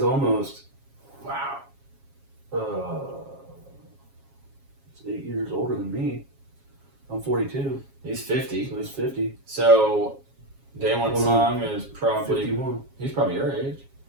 almost Wow. he's 8 years older than me. I'm 42, He's 50. so he's 50. So, Daewon Well, Song is probably, 51. he's probably your age.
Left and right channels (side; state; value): left; late; 7.3 ms